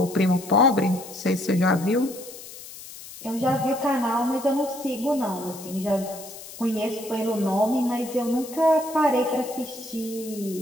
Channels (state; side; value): noise; left; hiss, 15 dB below the sound